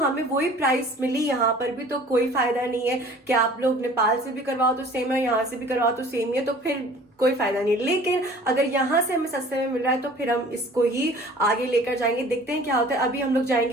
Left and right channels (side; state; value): both; normal; correlation 0.49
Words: वही प्राइस मिली यहाँ पर भी तो कोई फायदा नहीं है कि आप लोग नेपाल से भी करवाओ तो सेम है, यहाँ से भी करवाओ तो सेम ही है, तो फिर कोई फायदा नहीं। लेकिन अगर यहाँ से हमें सस्ते में मिल रहा है तो फिर हम इसको ही आगे लेकर जाएंगे, देखते हैं क्या होता है। अभी हम लोग